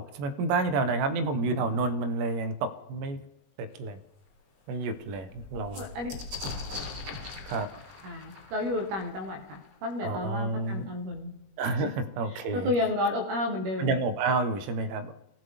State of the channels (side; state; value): left; late; 21 ms